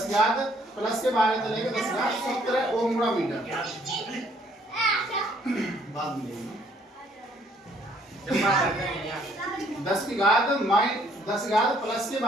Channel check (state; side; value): normal; both; correlation 0.64